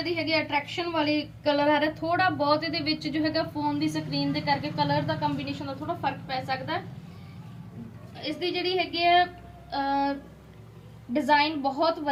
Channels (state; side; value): identical; both; correlation 1.00